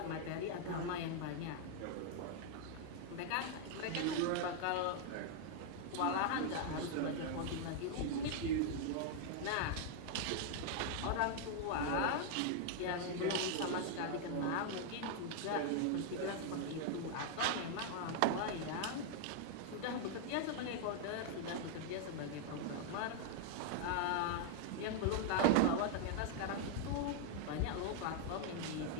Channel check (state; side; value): different; both; correlation 0.00